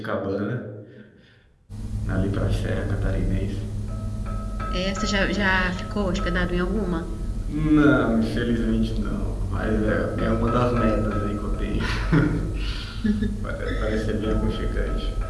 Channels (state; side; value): identical; both; correlation 1.00